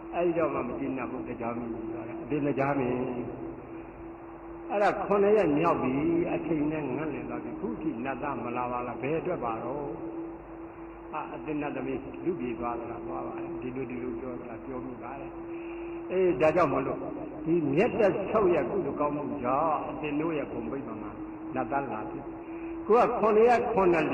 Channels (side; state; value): both; identical; correlation 1.00